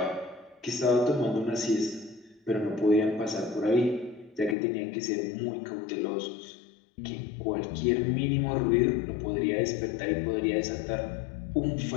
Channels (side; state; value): right; drops out; at 4.5 s